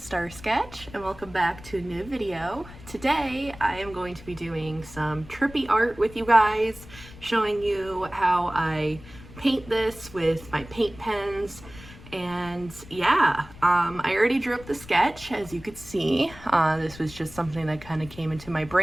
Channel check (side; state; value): left; noise; rumble, 18 dB below the sound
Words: Star Sketch and welcome back to a new video. Today I am going to be doing some trippy art with you guys, showing you how I paint this with my paint pens. And yeah, I already drew up the sketch, as you could see. This was just something that kind of came into my